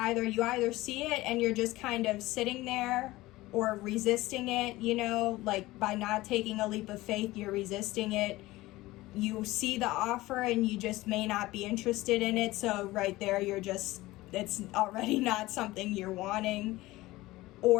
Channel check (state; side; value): quieter; right; 18.6 dB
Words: see it and you're just kind of sitting there or resisting it, you know, like by not taking a leap of faith, you're resisting it. You see the offer and you just may not be interested in it. So right there, it's already not something you're wanting.